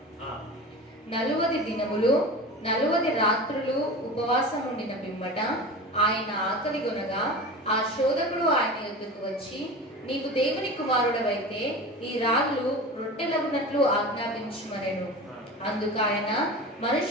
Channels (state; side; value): normal; both; correlation 0.32